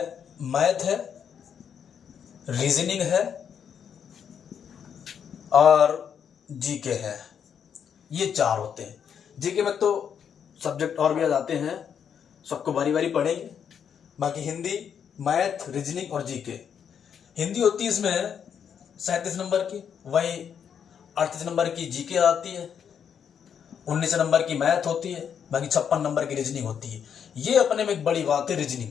मैथ है, रीजनिंग है और जीके है। ये 4 होते हैं। जीके में तो सब्जेक्ट और भी आ जाते हैं, सबको बारी बारी पढ़ेंगे। बाकी हिंदी, मैथ, रीजनिंग और जीके। हिंदी होती है इसमें 37 नंबर की, वही 38 नंबर की जीके आती है, 19 नंबर की मैथ होती है, बाकी 56 नंबर की रीजनिंग होती है। ये अपने में एक बड़ी बात है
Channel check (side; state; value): right; quieter; 7.9 dB